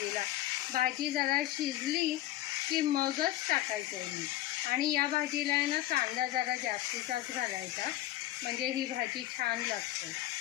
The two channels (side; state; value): right; quieter; 15.1 dB